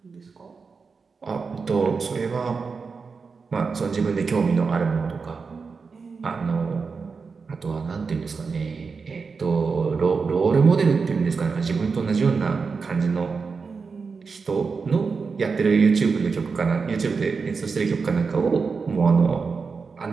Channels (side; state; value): left; quieter; 4.9 dB